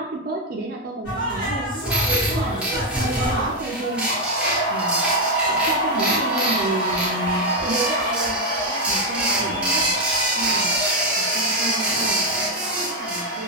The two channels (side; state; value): both; normal; correlation 0.04